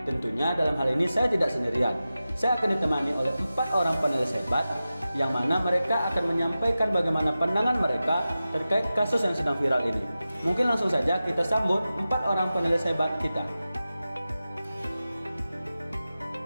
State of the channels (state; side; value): inverted; both; correlation -0.94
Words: Tentunya dalam hal ini saya tidak sendirian. Saya akan ditemani oleh 4 orang panelis hebat, yang mana mereka akan menyampaikan bagaimana pandangan mereka terkait kasus yang sedang viral ini. Mungkin langsung saja kita sambut 4 orang panelis hebat kita.